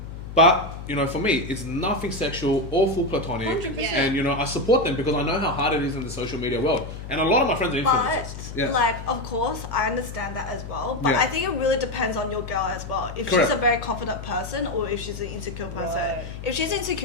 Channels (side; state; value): left; noise; hum, 10 dB below the sound